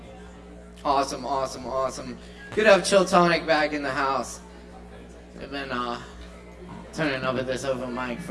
Awesome, awesome, awesome. Good to have Chill Tonic back in the house. They've been turning over this open mic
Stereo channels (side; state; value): both; identical; correlation 1.00